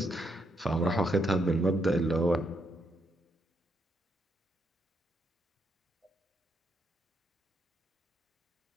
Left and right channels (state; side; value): normal; both; correlation 0.77